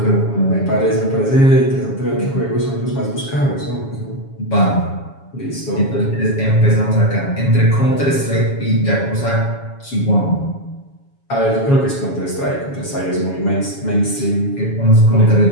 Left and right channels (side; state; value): right; late; 7.2 ms